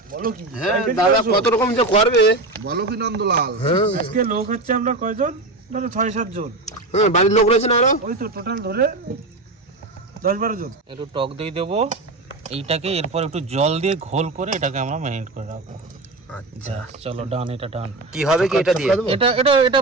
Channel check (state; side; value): quieter; left; 3.0 dB